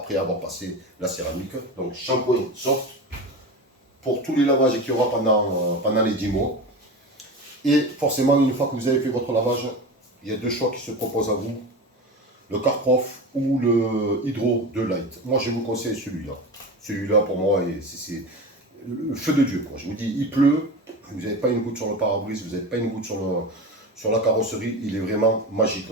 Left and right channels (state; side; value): normal; both; correlation 0.27